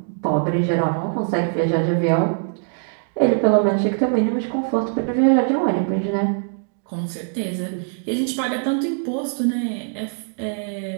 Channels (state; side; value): silent; left; digital silence